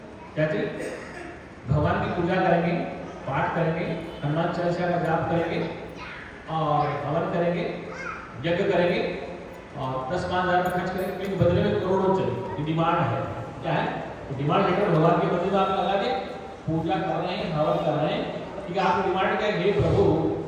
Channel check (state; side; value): identical; both; correlation 1.00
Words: क्या चाहिए, भगवान की पूजा करेंगे, पाठ करेंगे, हनुमान चालीसा का जाप करेंगे और हवन करेंगे, यज्ञ करेंगे और 10-5 हज़ार खर्च करेंगे, लेकिन बदले में करोड़ों चाहिए, डिमांड है, क्या है, डिमांड लेकर भगवान के मंदिर में आप लगा के पूजा कर रहे हैं, हवन कर रहे हैं, ठीक है, आपकी डिमांड क्या है, हे प्रभु